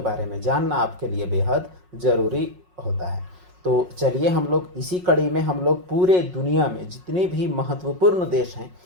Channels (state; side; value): late; left; 5.5 ms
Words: में जानना आपके लिए बेहद ज़रूरी होता है। तो चलिए हम लोग इसी कड़ी में हम लोग पूरे दुनिया में जितने भी महत्वपूर्ण देश हैं,